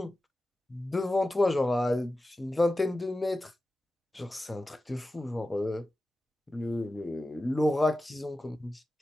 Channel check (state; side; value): normal; both; correlation 0.94